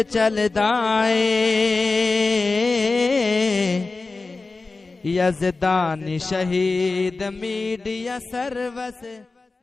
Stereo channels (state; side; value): quieter; right; 3.7 dB